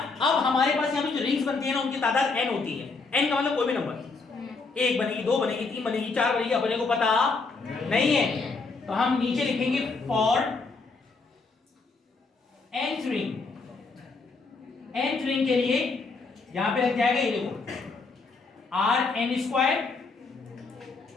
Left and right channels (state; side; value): quieter; right; 4.1 dB